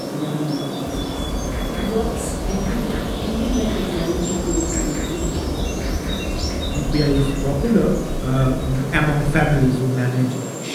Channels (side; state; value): both; identical; correlation 1.00